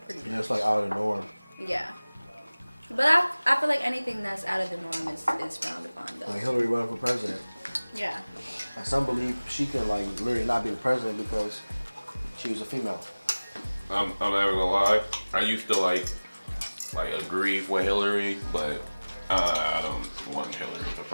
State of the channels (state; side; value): inverted; both; correlation -1.00